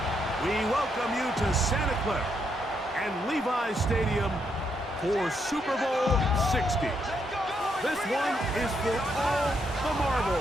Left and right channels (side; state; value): both; normal; correlation 0.77